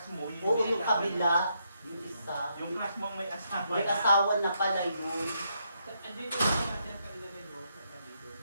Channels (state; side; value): inverted; both; correlation -0.78